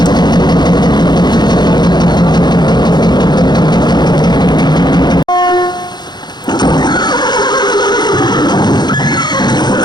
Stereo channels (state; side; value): late; right; 0.21 ms